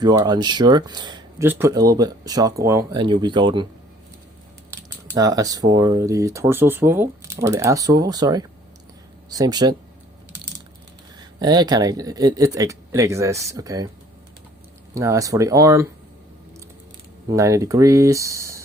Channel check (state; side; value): normal; both; correlation 0.57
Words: you are unsure, just put a little bit of shock oil and you'll be golden. Now, as for the torso swivel, or the ass swivel, sorry, same shit. It exists, okay. Now, as for the arm, 90